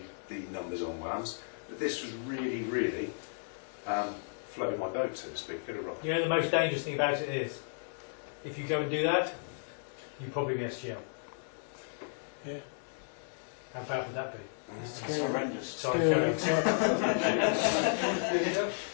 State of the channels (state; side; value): silent; right; 55 dB below the other